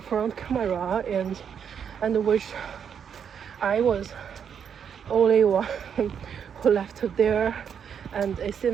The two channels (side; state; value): left; quieter; 7.7 dB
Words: front camera, and which I was only one who left there, and it